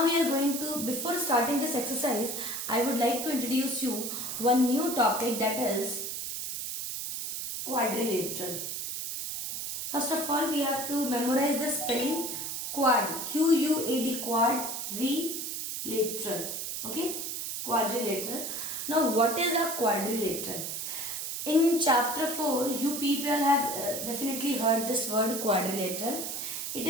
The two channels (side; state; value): right; noise; hiss, 4 dB below the sound